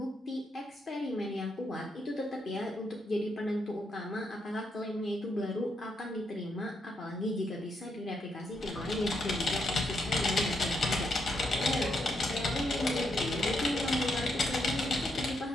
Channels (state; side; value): normal; both; correlation 0.79